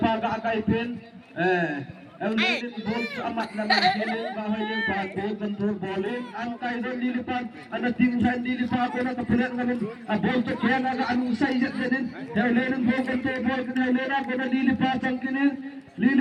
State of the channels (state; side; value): identical; both; correlation 1.00